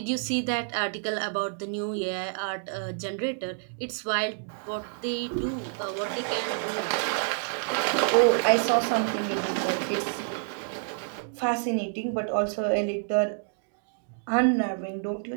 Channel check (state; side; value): silent; left; digital silence